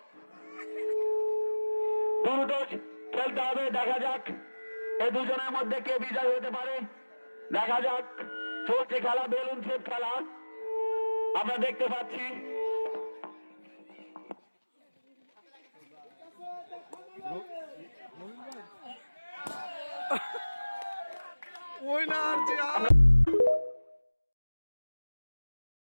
দ্রুত খেলতে হবে। দেখা যাক এই দুজনের মধ্যে কে বিজয় হতে পারে, দেখা যাক। চলছে খেলা, বেলুন শেপ খেলা, আমরা দেখতে পাচ্ছি। ওই না আর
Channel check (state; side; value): inverted; both; correlation -1.00